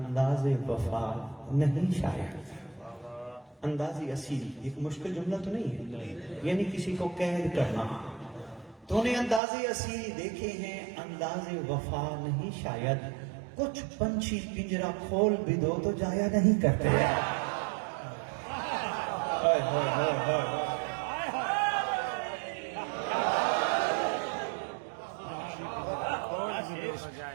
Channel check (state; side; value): drops out; left; at 9.4 s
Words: وفا نہیں شاید۔ اندازی اسیری ایک مشکل جملہ تو نہیں ہے، یعنی کسی کو قید کرنا۔ تو نے اندازی اسیری دیکھے ہیں، انداز وفا نہیں شاید، کچھ پنچھی پنجرا کھول بھی دو تو جایا نہیں کرتے۔